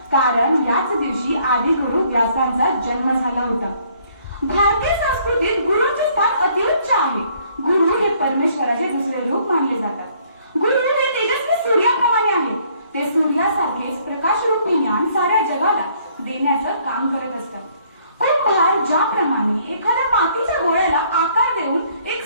कारण याच दिवशी आदि गुरु व्यासांचा जन्म झाला होता. भारतीय संस्कृतीत गुरुचे स्थान अतिउच्च आहे. गुरु हे परमेश्वराचे दुसरे रूप मानले जातात. गुरु हे तेजस्वी सूर्याप्रमाणे आहे. ते सूर्यासारखेच प्रकाशरूपी ज्ञान साऱ्या जगाला देण्याचं काम करत असतात. कुंभार ज्याप्रमाणे एखाद्या मातीच्या गोळ्याला आकार देऊन एक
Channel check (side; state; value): both; inverted; correlation -0.63